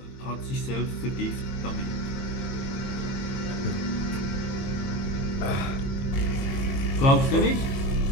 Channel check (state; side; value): late; right; 22 ms